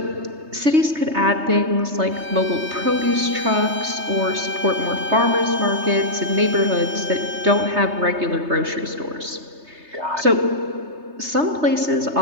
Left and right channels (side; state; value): left; late; 3.3 ms